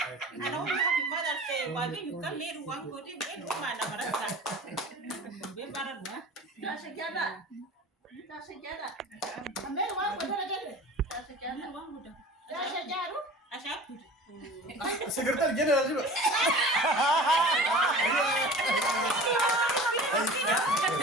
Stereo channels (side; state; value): both; normal; correlation 0.40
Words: Ana ongi happy Mother's Day. Wagi yukan leru wang kodi ben uma na barasa. Be baran wa. ta se jada ame wa ko dara jade ta se jada wang muda Dasha jaru. Asha. Secretary General juga.